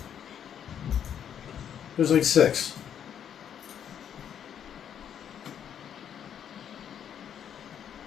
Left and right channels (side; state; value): right; quieter; 8.9 dB